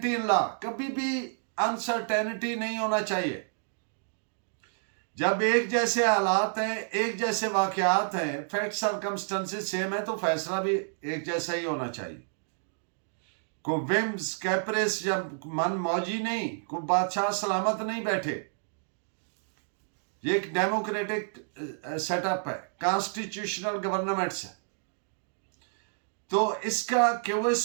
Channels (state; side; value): silent; left; digital silence